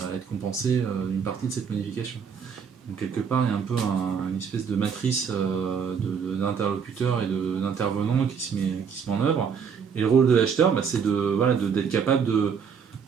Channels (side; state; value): left; quieter; 6.6 dB